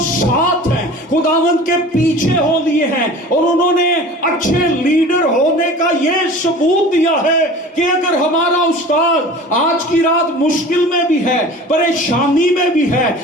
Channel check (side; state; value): both; normal; correlation 0.41